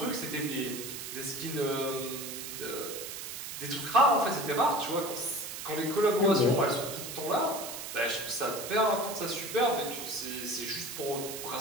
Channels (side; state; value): right; noise; hiss, 8 dB below the sound